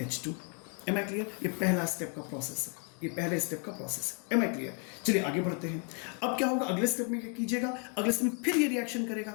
Am I clear? ये पहला स्टेप का प्रोसेस है, ये पहले स्टेप का प्रोसेस है। Am I clear? चलिए आगे बढ़ते हैं। अब क्या होगा अगले स्टेप में, क्या कीजिएगा? अगले स्टेप में फिर ये रिएक्शन करेगा।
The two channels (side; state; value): right; quieter; 39.7 dB